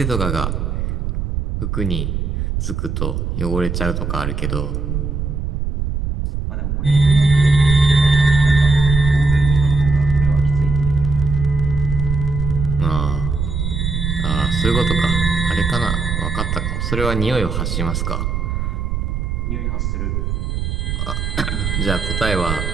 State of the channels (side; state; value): right; noise; rumble, 2 dB below the sound